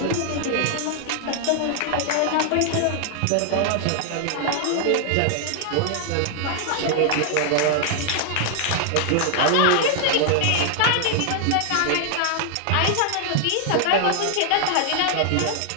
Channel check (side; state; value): both; different; correlation 0.00